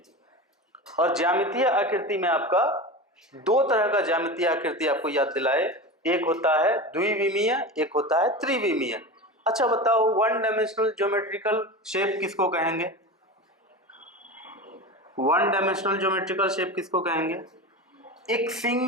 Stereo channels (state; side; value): normal; both; correlation 0.27